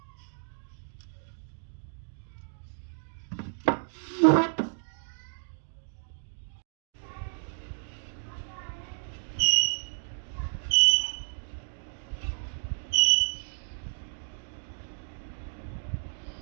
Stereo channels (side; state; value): left; silent; digital silence